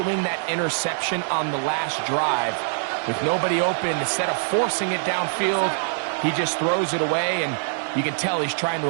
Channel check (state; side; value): silent; left; 63 dB below the other